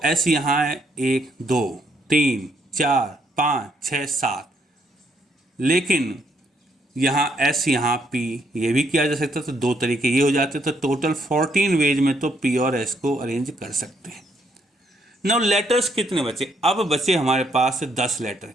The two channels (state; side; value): normal; both; correlation 0.72